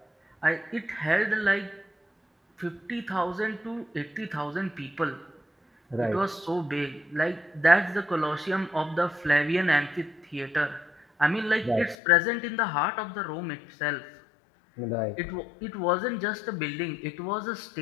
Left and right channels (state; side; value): drops out; right; at 12.0 s